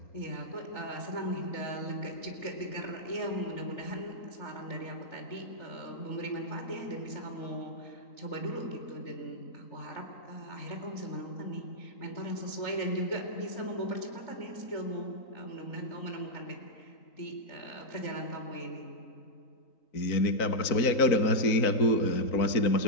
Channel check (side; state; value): right; late; 3.9 ms